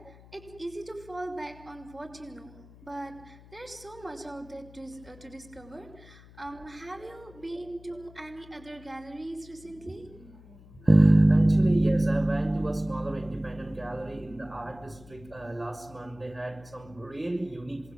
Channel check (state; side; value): noise; left; hum, 21 dB below the sound